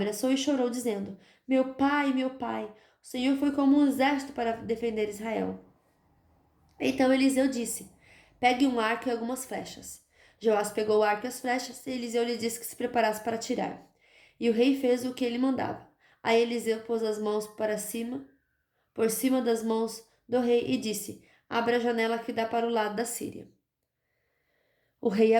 e chorou, dizendo: meu pai, o Senhor foi como um exército para defender Israel. Então Eliseu disse: pegue um arco e algumas flechas. Joás pegou o arco e as flechas, e Eliseu lhe disse que se preparasse para atirar. E o rei fez o que ele mandava. Aí Eliseu pôs as mãos para cima, por cima das mãos do rei, e disse: abra a janela que dá para o lado da Síria. O rei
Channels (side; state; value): both; identical; correlation 1.00